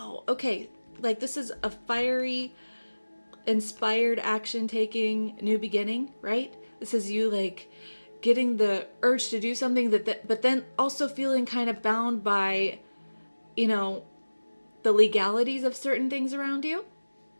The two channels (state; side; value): inverted; both; correlation -1.00